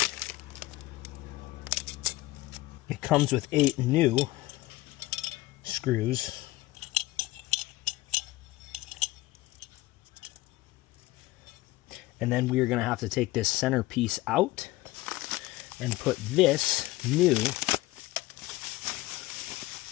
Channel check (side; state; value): right; quieter; 18.6 dB